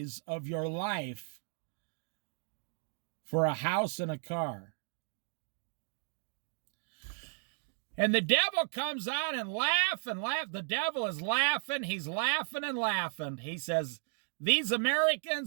of your life for a house and a car. And the devil comes out and laugh and laugh. The devil is laughing. He's laughing and laughing. He says, these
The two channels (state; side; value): silent; left; 55 dB below the other